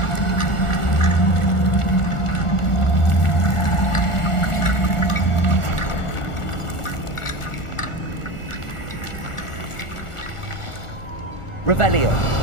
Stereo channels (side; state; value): right; late; 1.4 ms